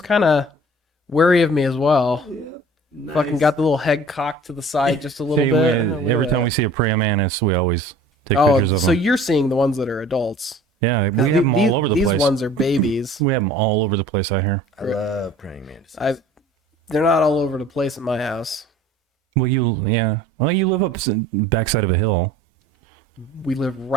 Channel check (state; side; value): normal; both; correlation 0.48